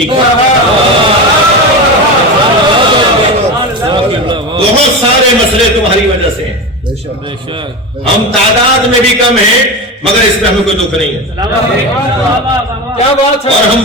کرو. بہت سارے مسئلے تمہاری وجہ سے ہیں. ہم تعداد میں بھی کم ہیں مگر اس میں ہمیں کوئی دکھ نہیں ہے. اور ہم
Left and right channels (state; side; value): normal; both; correlation 0.22